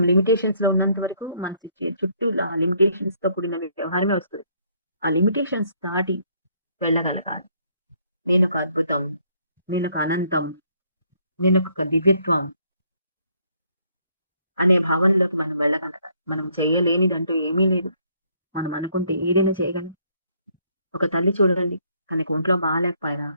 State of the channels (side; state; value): both; inverted; correlation -0.67